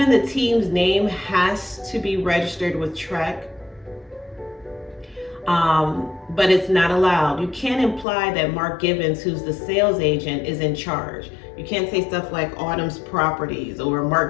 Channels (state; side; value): drops out; right; at 8.1 s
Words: the team's name has to be registered with TREC, but it's not allowed. You can't imply that Mark Givens, who's the sales agent, is in charge. You can't say stuff like Autumn's Properties or